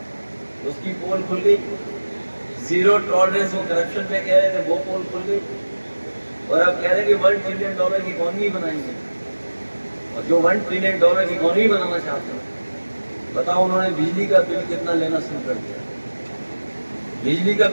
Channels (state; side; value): inverted; both; correlation -1.00